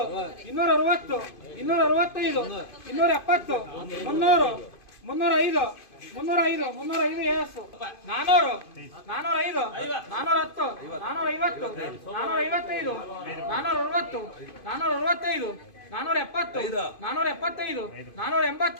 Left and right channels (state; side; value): late; right; 2.5 ms